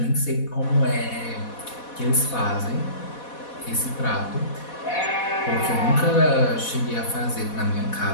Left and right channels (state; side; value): late; right; 4.1 ms